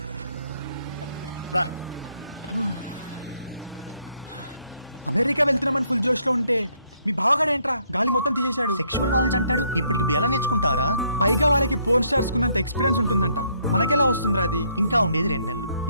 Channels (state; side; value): inverted; both; correlation -0.70